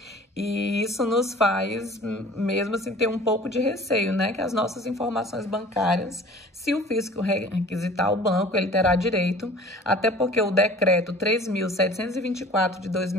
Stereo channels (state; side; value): normal; both; correlation 0.46